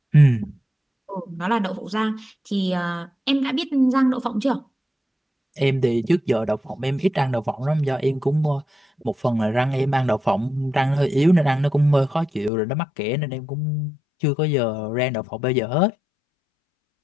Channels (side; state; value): right; drops out; at 12.5 s